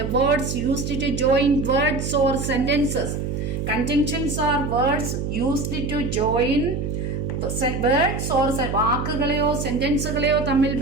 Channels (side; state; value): right; noise; hum, 3 dB below the sound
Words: words used to join words or sentences. Conjunctions are words used to join words or വാക്കുകളെയോ സെന്റൻസുകളെയോ തമ്മിൽ